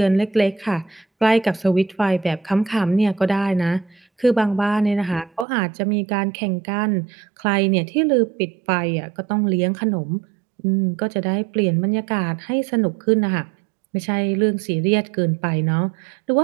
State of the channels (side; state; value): left; drops out; at 5.5 s